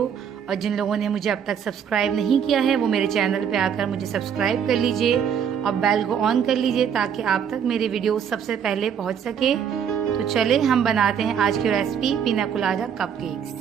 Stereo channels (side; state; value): left; quieter; 7.9 dB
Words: और जिन लोगों ने मुझे अब तक सब्सक्राइब नहीं किया है वो मेरे चैनल पे आकर मुझे सब्सक्राइब कर लीजिए और बेल को ऑन कर लीजिए ताकि आप तक मेरे वीडियो सबसे पहले पहुँच सके। तो चले हम बनाते हैं आज की रेसिपी पीना colada cupcakes.